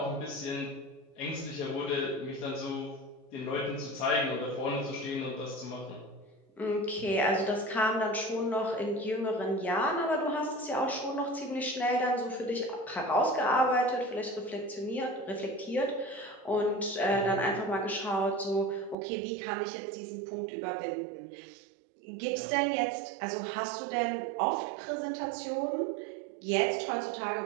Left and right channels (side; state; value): left; drops out; at 18.9 s